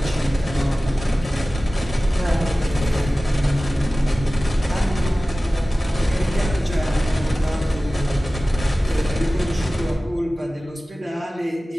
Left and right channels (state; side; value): normal; both; correlation 0.97